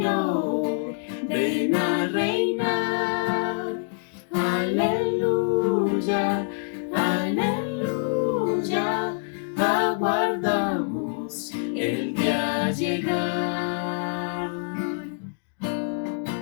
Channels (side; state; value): right; silent; digital silence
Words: ven a reinar. Aleluya, aleluya, aguardamos el día llegar.